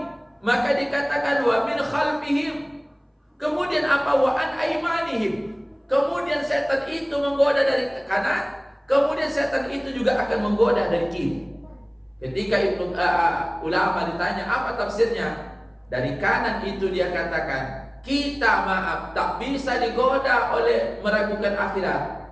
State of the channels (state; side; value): identical; both; correlation 1.00